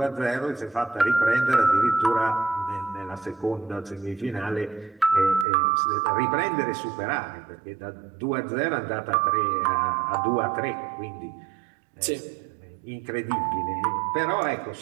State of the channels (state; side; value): drops out; left; at 5.5 s